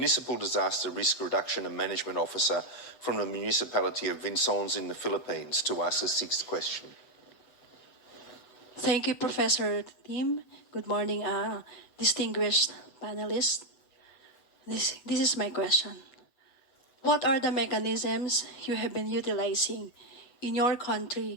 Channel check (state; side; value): late; right; 8.2 ms